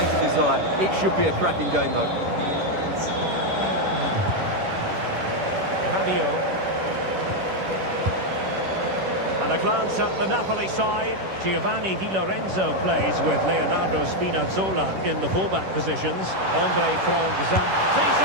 desire. It should be a cracking game, though. Rabiot. And a glance at the Napoli side. Giovanni Di Lorenzo plays with Leonardo Spinazzola in the fullback positions. Andre Franck-Zamp.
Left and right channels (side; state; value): left; late; 10 ms